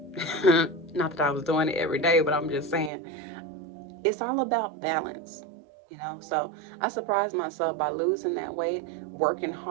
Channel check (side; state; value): left; drops out; at 2.9 s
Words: Not that I was doing it every day, but I'm just saying it's all about balance. So I surprised myself by losing that weight, working